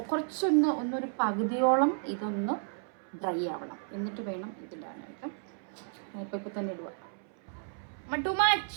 ഒന്നൊരു പകുതിയോളം ഇതൊന്ന് ഡ്രൈ ആവണം. എന്നിട്ട് വേണം ഇതിടാനായിട്ട്. ഇപ്പൊ തന്നെ ഇടുക.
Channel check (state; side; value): silent; left; 56 dB below the other